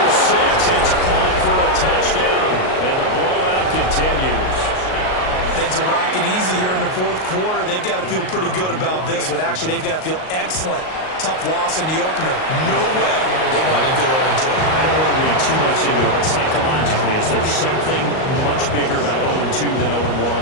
6. It's caught for a touchdown, and the blowout continues. Things are rocking easy here in the 4th quarter. They've got to feel pretty good about this one. Actually, they've got to feel excellent. Tough loss in the opener. No way they want to go 0-2. I don't want to read too much into it, but psychologically, is there something much bigger about 0-2 than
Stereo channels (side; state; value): right; late; 38 ms